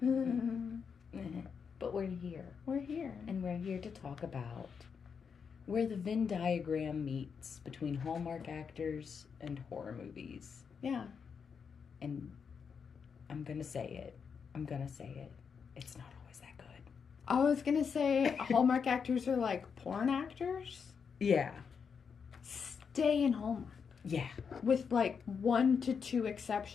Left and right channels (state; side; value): quieter; right; 6.3 dB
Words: But we're here. We're here. And we're here to talk about where the Venn diagram meets between Hallmark actors and horror movies. Yeah. And I'm going to say it. It's not always that good. I was going to say Hallmark actors are like porn actors. Yeah. Stay in Hallmark. Yeah. With like 1 to 2